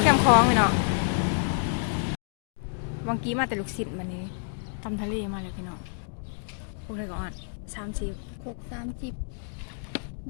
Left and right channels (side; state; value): right; silent; digital silence